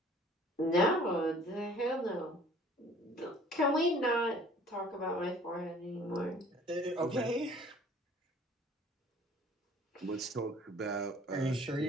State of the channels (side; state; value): both; normal; correlation 0.52